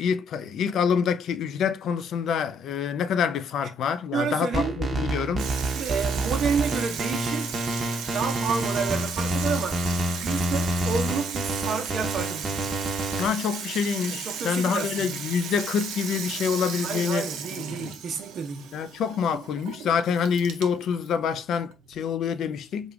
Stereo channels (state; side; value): normal; both; correlation 0.68